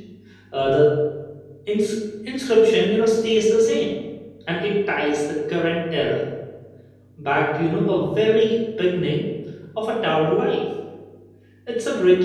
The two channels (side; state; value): both; identical; correlation 1.00